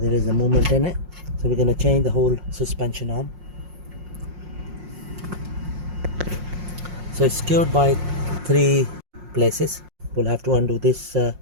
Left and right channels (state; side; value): late; left; 5.6 ms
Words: is a movement in it, so we're going to change the whole suspension arm. So it's secured by 3 places. We'll have to undo this